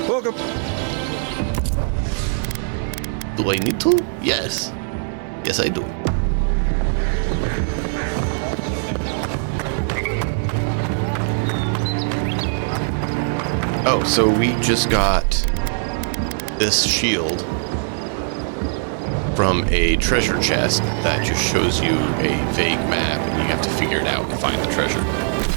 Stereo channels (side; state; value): left; silent; digital silence